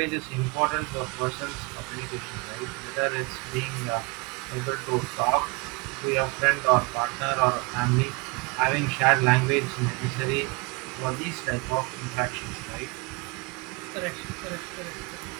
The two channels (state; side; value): quieter; left; 28.8 dB